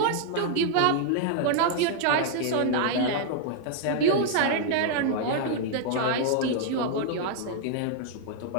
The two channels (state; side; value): different; both; correlation -0.01